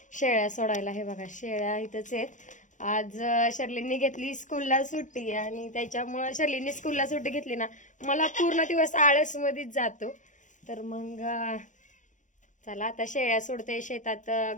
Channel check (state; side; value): late; right; 0.36 ms